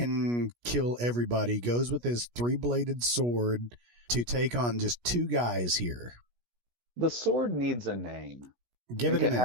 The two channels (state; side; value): late; left; 17 ms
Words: kill everybody, goes with his 3-bladed sword to take on just 2 guys here. The sword needs a name. Give it a